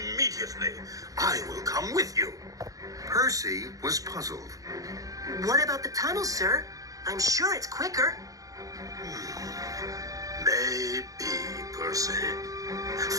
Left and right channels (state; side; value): late; left; 0.17 ms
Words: I will come with you. Percy was puzzled. What about the tunnel, sir? I'm sure it's quicker. Maybe, Percy.